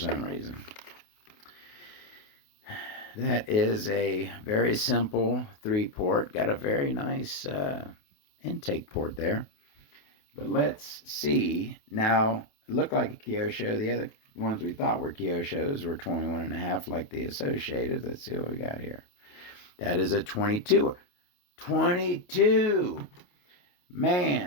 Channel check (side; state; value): right; late; 28 ms